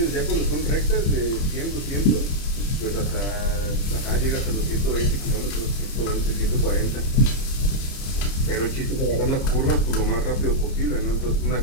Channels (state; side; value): late; right; 30 ms